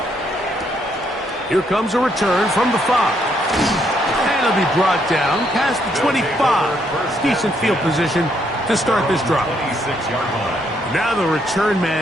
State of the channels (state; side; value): normal; both; correlation 0.73